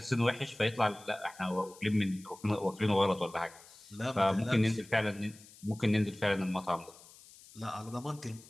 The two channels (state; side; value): noise; left; hiss, 22 dB below the sound